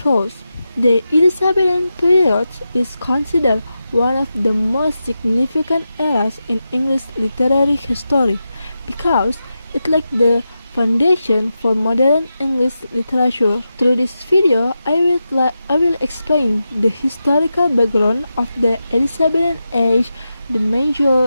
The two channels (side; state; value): both; inverted; correlation -0.90